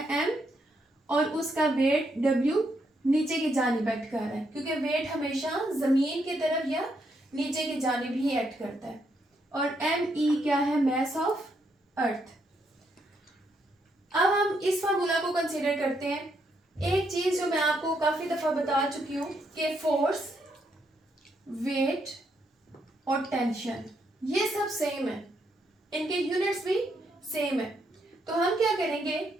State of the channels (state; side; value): normal; both; correlation 0.77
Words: m और उसका वेट w नीचे की जानिब एक्ट कर रहा है, क्योंकि वेट हमेशा जमीन की तरफ या नीचे की जानिब ही एक्ट करता है। और एम ई क्या है, मैस ऑफ अर्थ। अब हम इस फार्मूला को कंसीडर करते हैं। एक चीज जो मैं आपको काफी दफा बता चुकी हूँ कि फोर्स, वेट और टेंशन ये सब सेम है, इनके यूनिट्स भी सेम है। तो हम क्या करेंगे